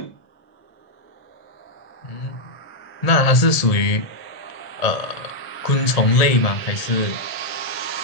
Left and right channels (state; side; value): late; right; 1.7 ms